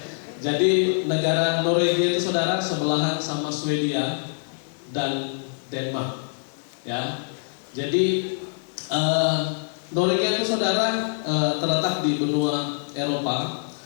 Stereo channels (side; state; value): right; silent; 62 dB below the other